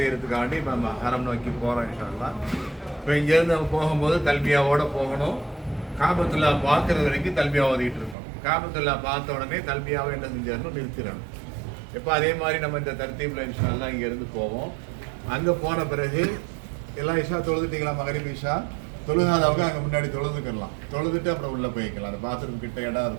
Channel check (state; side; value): drops out; left; at 8.2 s